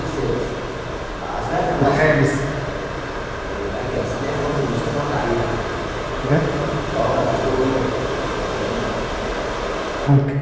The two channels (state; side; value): identical; both; correlation 1.00